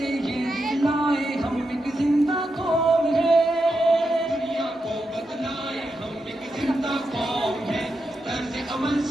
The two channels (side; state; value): both; normal; correlation 0.86